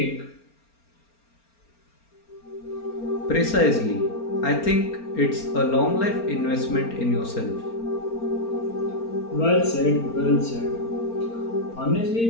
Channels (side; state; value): right; late; 4.4 ms